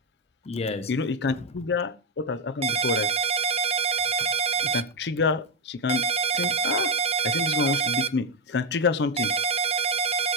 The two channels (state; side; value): normal; both; correlation 0.06